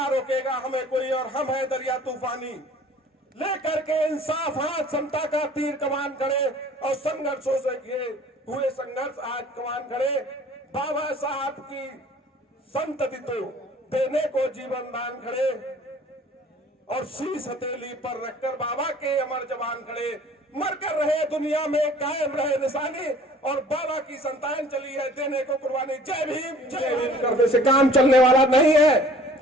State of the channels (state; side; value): normal; both; correlation 0.51